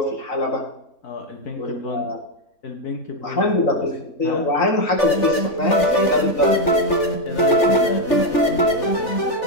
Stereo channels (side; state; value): right; late; 3.4 ms